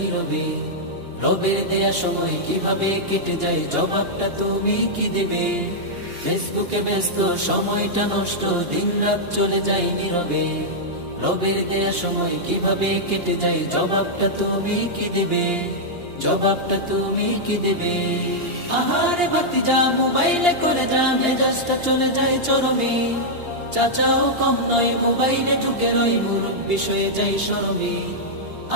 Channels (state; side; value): late; left; 2.8 ms